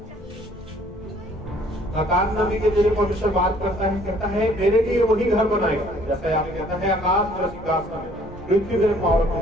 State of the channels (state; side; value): normal; both; correlation 0.59